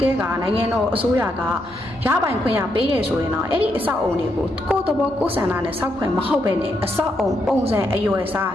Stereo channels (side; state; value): both; normal; correlation 0.79